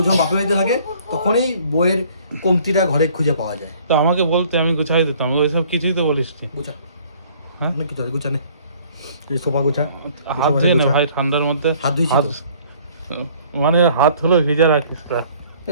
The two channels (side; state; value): both; inverted; correlation -0.57